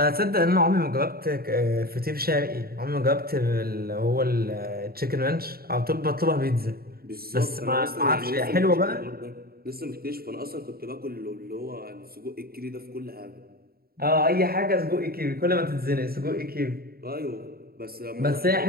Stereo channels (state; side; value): late; left; 0.44 ms